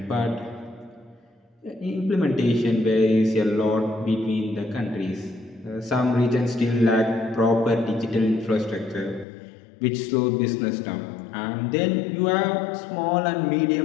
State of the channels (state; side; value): drops out; right; at 9.2 s